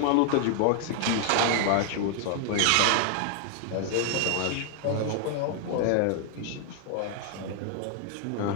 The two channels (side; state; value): both; different; correlation 0.00